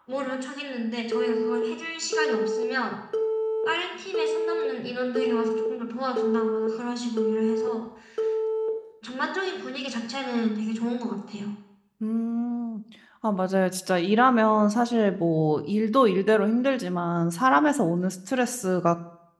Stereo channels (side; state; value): both; identical; correlation 1.00